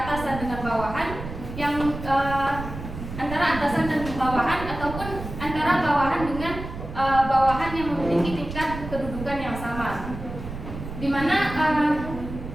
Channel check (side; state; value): right; noise; rumble, 9 dB below the sound